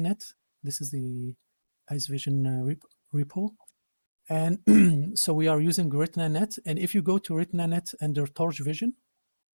this is the Ice Vision repo. And so we are using RetinaNet. And if you go to RetinaNet under Torch Vision,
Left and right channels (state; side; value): inverted; both; correlation -1.00